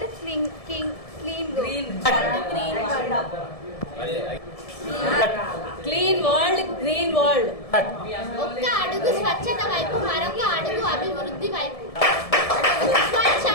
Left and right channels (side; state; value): right; late; 1.7 ms